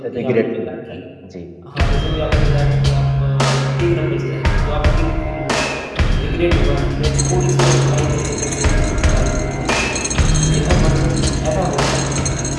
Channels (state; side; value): identical; both; correlation 1.00